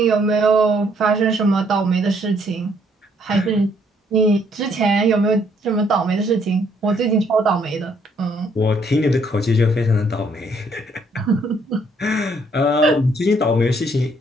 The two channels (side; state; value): both; normal; correlation 0.67